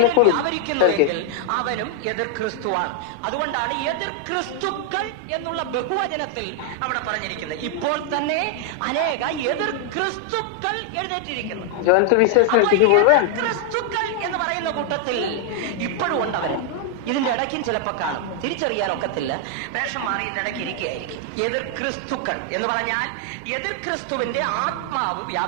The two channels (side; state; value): both; different; correlation 0.00